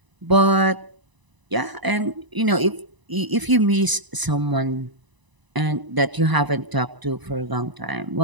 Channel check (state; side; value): late; left; 1.0 ms